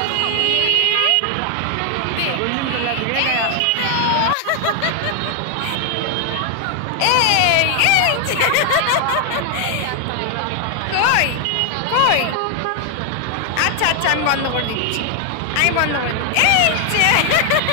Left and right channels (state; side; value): different; both; correlation 0.00